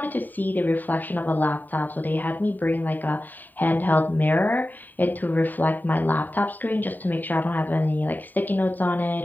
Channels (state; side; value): late; right; 0.088 ms